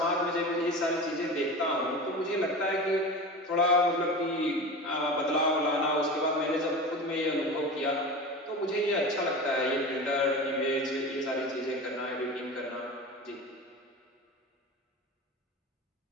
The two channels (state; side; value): normal; both; correlation 0.30